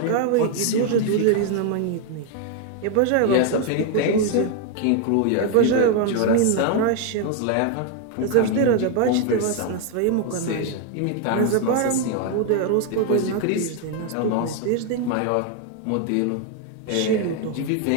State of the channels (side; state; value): both; different; correlation 0.01